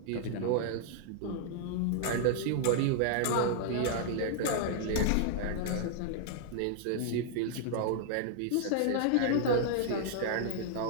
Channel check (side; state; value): both; different; correlation -0.01